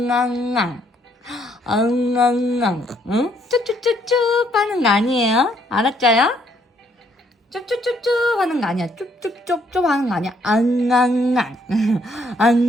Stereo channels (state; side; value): normal; both; correlation 0.69